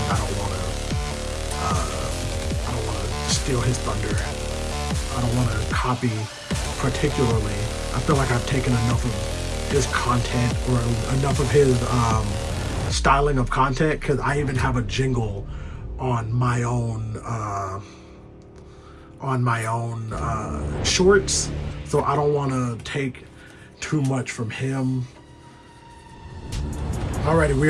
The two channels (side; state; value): both; identical; correlation 1.00